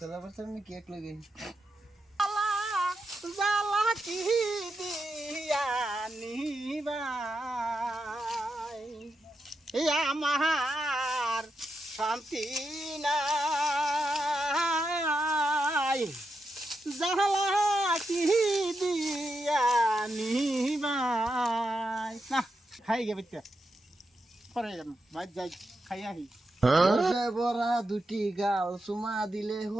চলাবার সামনে কি এক লগে জালা কি দিয়া নিবাই এই আমার শান্তি নাই জালা কি দিয়া নিবাই না খাই গে বেটা পরে যাম মাছ যাই খাই আহি বসে বড়া দুটি গাল সুমা দিলে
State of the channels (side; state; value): both; normal; correlation 0.86